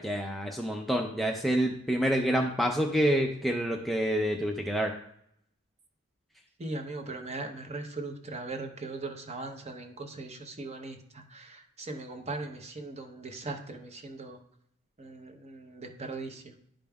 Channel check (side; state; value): both; normal; correlation 0.76